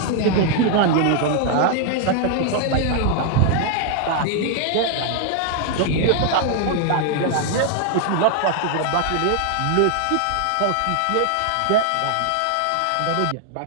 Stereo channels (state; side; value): different; both; correlation 0.00